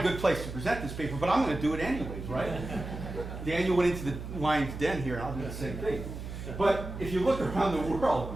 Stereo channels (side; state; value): right; noise; hum, 8 dB below the sound